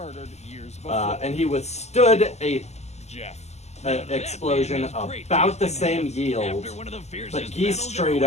years before. And he withstood a Jeff. explosion about the same yield, but Geese straight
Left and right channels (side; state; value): right; late; 0.32 ms